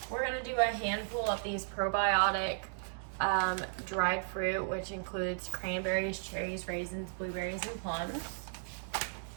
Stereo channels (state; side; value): silent; left; digital silence